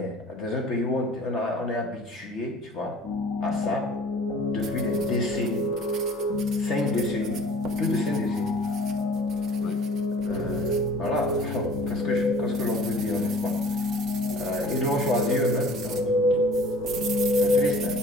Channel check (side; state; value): both; normal; correlation 0.48